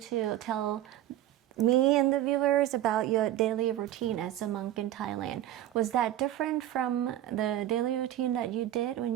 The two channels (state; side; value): quieter; left; 12.8 dB